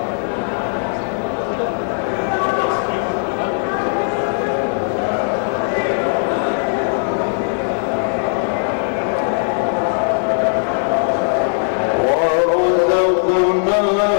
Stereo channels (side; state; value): right; silent; 67 dB below the other